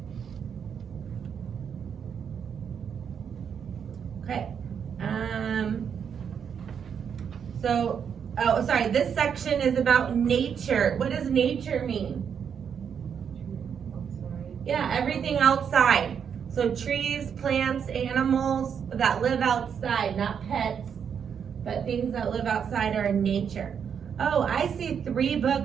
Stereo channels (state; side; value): quieter; left; 7.4 dB